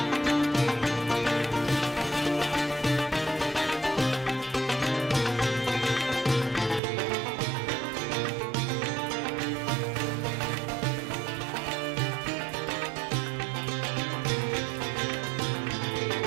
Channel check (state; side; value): drops out; left; at 6.8 s